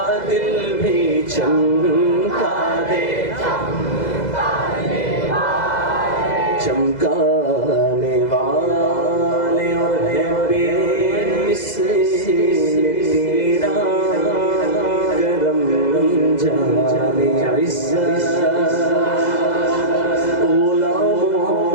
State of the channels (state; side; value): late; right; 2.0 ms